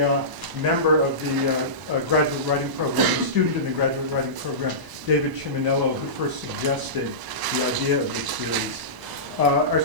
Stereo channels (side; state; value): left; late; 1.0 ms